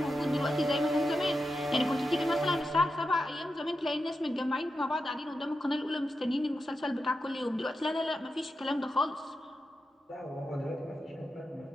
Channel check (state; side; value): normal; both; correlation 0.89